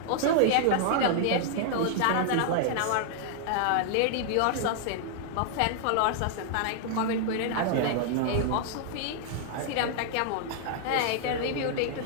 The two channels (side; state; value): both; different; correlation -0.01